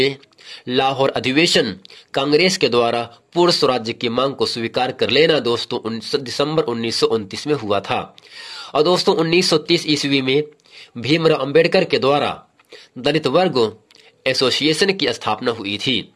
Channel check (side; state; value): both; identical; correlation 1.00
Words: लाहौर अधिवेशन कांग्रेस के द्वारा पूर्ण स्वराज्य की मांग को स्वीकार कर लेना दोस्तों दिसंबर 1929 में हुआ था। और दोस्तों 1930 ईस्वी में भीमराव अंबेडकर के द्वारा दलित वर्ग एसोसिएशन की स्थापना हुई थी।